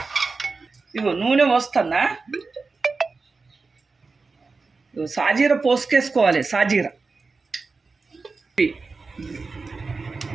ఇగో నూనె పోస్తున్నా. సాజీర పోసుకేసుకోవాలి. సాజీర,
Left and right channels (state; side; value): quieter; left; 4.2 dB